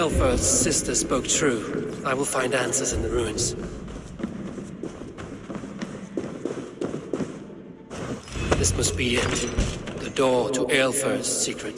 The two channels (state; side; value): identical; both; correlation 1.00